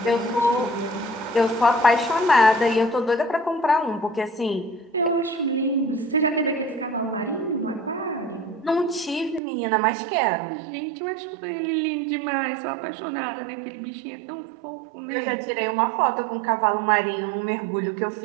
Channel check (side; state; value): left; drops out; at 9.4 s